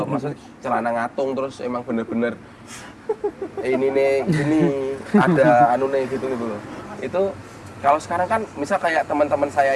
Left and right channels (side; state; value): both; identical; correlation 1.00